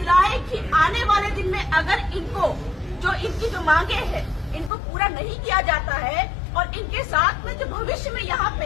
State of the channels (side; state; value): right; drops out; at 4.7 s